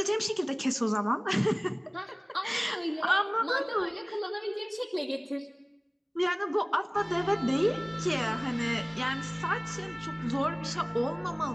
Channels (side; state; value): both; identical; correlation 1.00